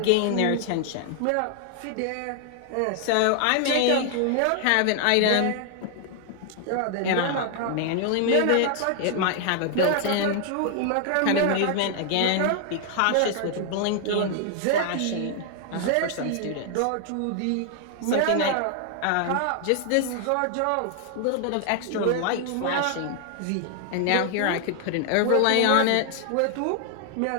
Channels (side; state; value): both; different; correlation 0.00